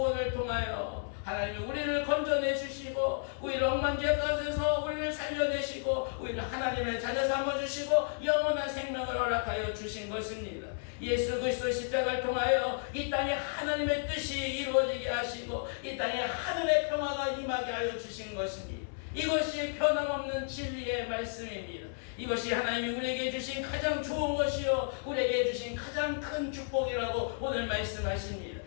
통하여 하나님이 우리를 건져내 주시고 우리를 엉망지에 가져서 우리를 살려내시고 우리를 하나님의 자녀 삼아주시고 영원한 생명을 허락하여 주신 것입니다. 예수 그리스도의 십자가를 통하여 이 땅에 하나님의 뜻이 이루어지게 하시고 이 땅에 하늘의 평화가 임하게 하여 주신 것입니다. 이것이 변함없는 진리의 말씀입니다. 이것이 하나님이 우리에게 주신 가장 좋은 것이요 우리에게 주신 가장 큰 축복이라고 오늘 말씀하십니다.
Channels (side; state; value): right; silent; digital silence